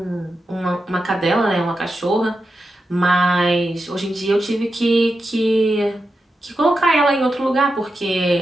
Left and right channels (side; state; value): both; normal; correlation 0.89